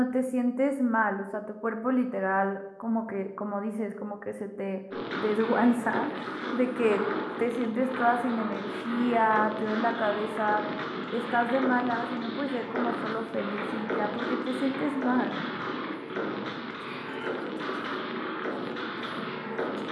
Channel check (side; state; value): both; identical; correlation 1.00